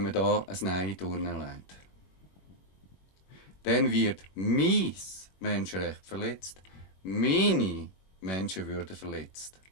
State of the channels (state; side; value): late; right; 21 ms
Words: man da ein Nein durchlegt. Dann wird mein Menschenrecht verletzt, meine Menschenwürde verletzt.